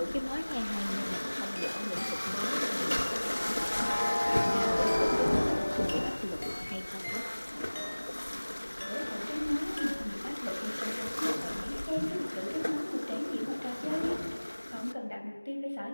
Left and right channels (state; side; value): inverted; both; correlation -1.00